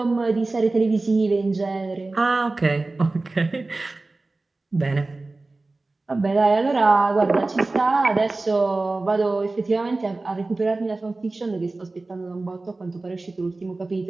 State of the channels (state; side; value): quieter; left; 3.3 dB